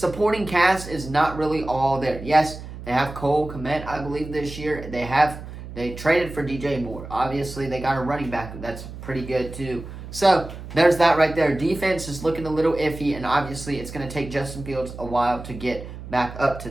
cast is not really all there. Yes, they have Cole Kmet, I believe, this year. They traded for DJ Moore. Obviously, they got a running back that's pretty good, too. So, there's that right there. Defense is looking a little iffy, and obviously, it's going to take Justin Fields a while to get back up to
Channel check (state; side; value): noise; right; hum, 12 dB below the sound